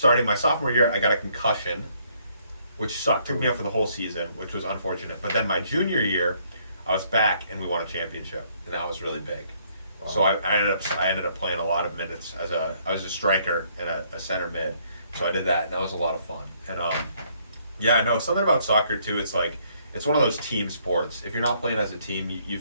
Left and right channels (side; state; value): both; inverted; correlation -0.68